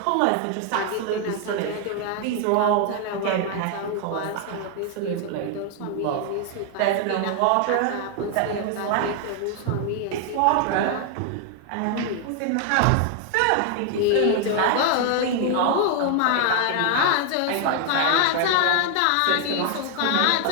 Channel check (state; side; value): different; both; correlation 0.00